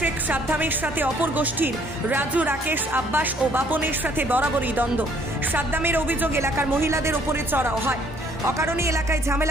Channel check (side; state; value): both; normal; correlation 0.62